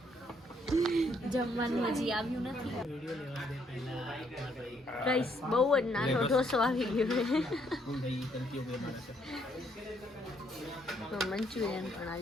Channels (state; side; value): normal; both; correlation 0.70